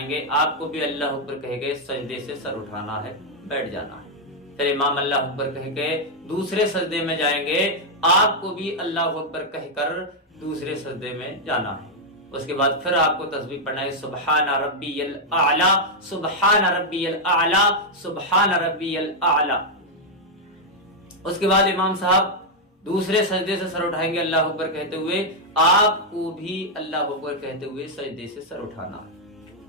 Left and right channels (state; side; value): normal; both; correlation -0.02